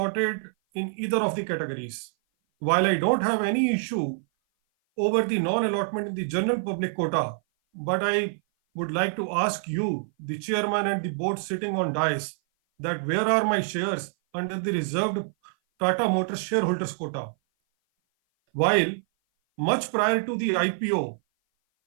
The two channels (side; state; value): left; silent; 57 dB below the other